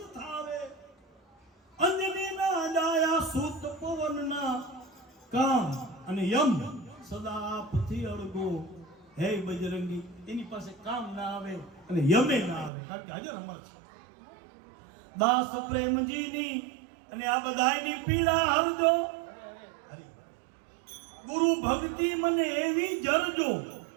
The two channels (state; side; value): drops out; left; at 12.7 s